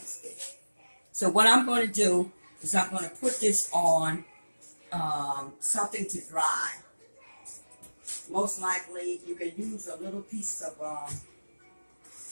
stitch. So what I'm going to do is I'm going to put this on something to dry. Most likely you can use a little piece of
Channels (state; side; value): inverted; both; correlation -1.00